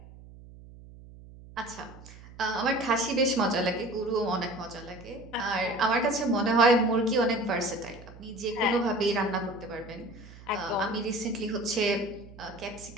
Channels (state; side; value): noise; right; hum, 19 dB below the sound